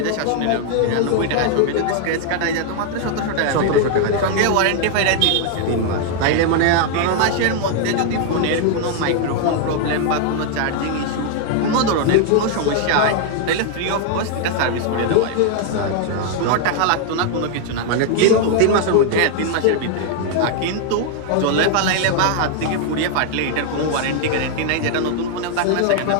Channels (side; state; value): both; different; correlation 0.00